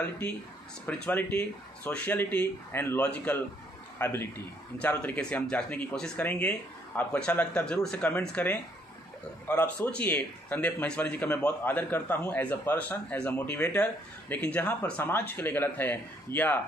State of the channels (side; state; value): both; normal; correlation 0.68